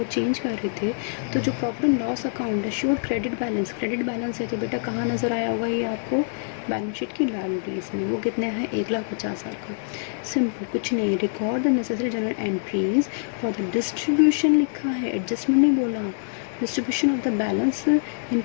change कर रहे थे तो जो प्रॉफिट एंड लॉस अकाउंट है शोड क्रेडिट बैलेंस है। तो बेटा कहाँ नज़र आया होगा ये आपको? बैलेंस शीट की लायबिलिटीज़ में। वो कितने है? 1,50,000 का। सिंपल, कुछ नहीं, record the necessary general entries for the distribution लिखा है, एडजस्टमेंट नहीं बोला। Distribution of the balance in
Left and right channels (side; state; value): right; silent; 62 dB below the other